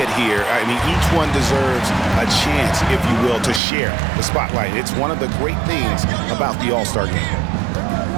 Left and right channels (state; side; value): drops out; left; at 3.6 s